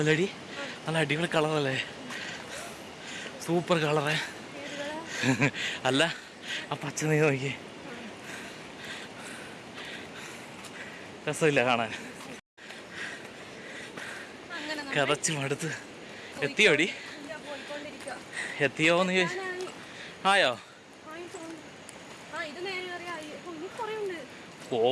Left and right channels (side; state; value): both; identical; correlation 1.00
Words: നല്ല അടിപൊളി കളറല്ലേ? സൂപ്പർ കളറേ. അല്ല ആ പച്ച നീ നോക്കി. രസമില്ല കാണാൻ. കതച്ച് മടുത്ത്. എത്തിയോടി? എത്തിയോന്ന് ചോദിച്ചു. ആയോ?